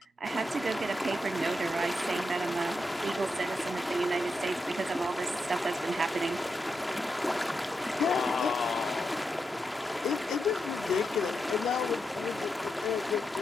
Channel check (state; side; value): normal; both; correlation 0.86